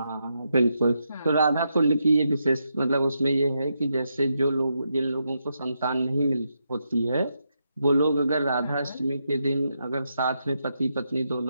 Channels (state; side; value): inverted; both; correlation -0.83